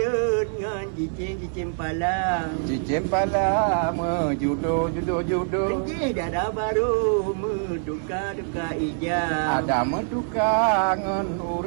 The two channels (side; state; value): left; silent; 62 dB below the other